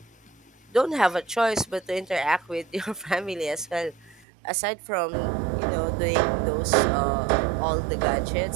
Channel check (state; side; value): drops out; left; at 4.2 s